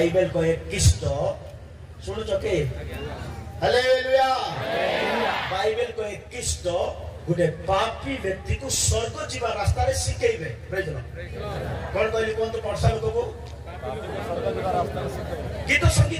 कहे कृष्ण सुनुछ के? हालेलुया। बाइबल कहे कृष्ण गुटे पापी व्यक्ति को स्वर्ग जीवा रास्ता रे सिखेइबे। Praise Lord. कोन कहली कोन तो पढ़सा लोक को गीत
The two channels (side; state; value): both; identical; correlation 1.00